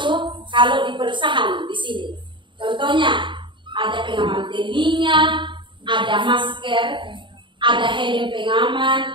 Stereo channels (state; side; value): late; left; 0.23 ms